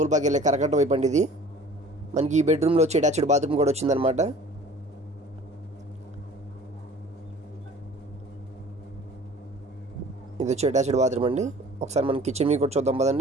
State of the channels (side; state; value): both; normal; correlation 0.47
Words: వెళ్ళే కరకట్ట వైపు అండి. ఇది మనకి ఈ బెడ్రూమ్లో వచ్చి అటాచ్డ్ బాత్రూమ్ కూడా వచ్చిందనమాట. ఇది వచ్చి అటాచ్డ్ బాత్రూమ్ అండి. ఒకసారి మన కిచెన్ మీకు కూడా చూద్దాం